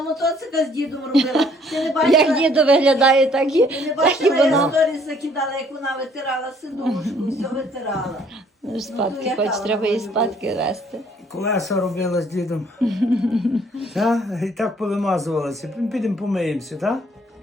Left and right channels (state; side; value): normal; both; correlation 0.62